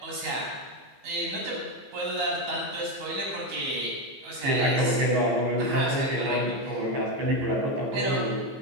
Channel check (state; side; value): late; left; 14 ms